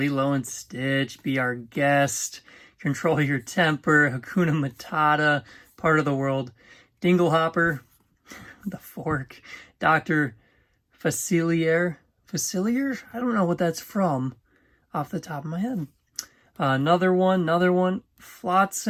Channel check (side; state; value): both; identical; correlation 1.00